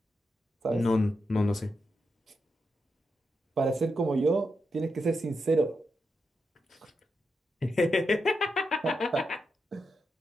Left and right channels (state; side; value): normal; both; correlation 0.86